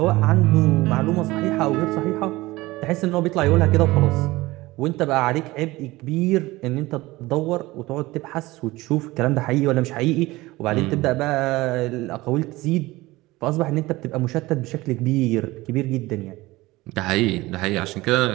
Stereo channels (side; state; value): left; quieter; 19.7 dB